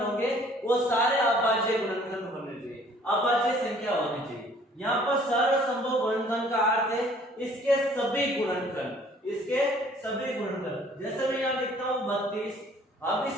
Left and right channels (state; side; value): normal; both; correlation 0.56